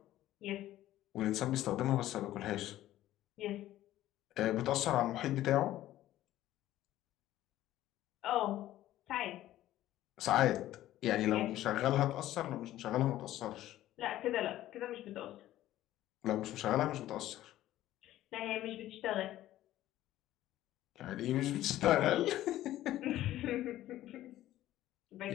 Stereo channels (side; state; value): right; quieter; 14.1 dB